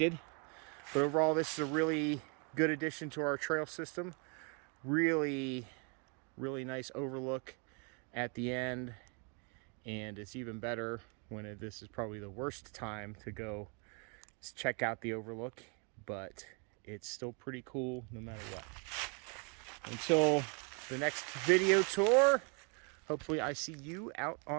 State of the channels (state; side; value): quieter; left; 35.8 dB